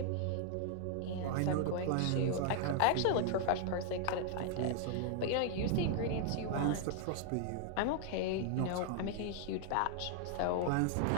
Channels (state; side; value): different; both; correlation 0.00